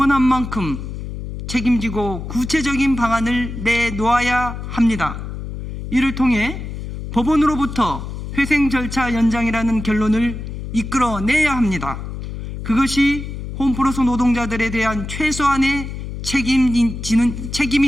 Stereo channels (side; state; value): left; noise; hum, 8 dB below the sound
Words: 만큼 책임지고 구체적인 방안을 내놓아야 합니다. 이를 통해 법원으로부터 회생 절차 연장이라는 결론을 이끌어내야 합니다. 그것이 홈플러스 노동자들에 대한 최소한의 책임